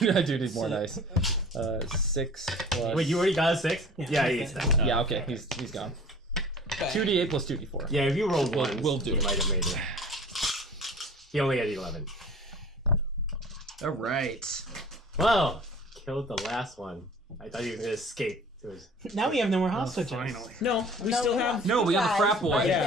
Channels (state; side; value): normal; both; correlation 0.45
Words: more dice. 6 plus. Wait, you already got a 6? Yeah. Yeah, he gets that. Yeah, okay, he's gone. 2d8 plus 2d4. Yeah, if you rolled We'll- one, we'll do he it. might have made it. He only had 11. All right. Well, killed the last one. I thought he was gonna escape. It was Now we have no more house switches. no, we still have. No, we have the frat boy, Yeah.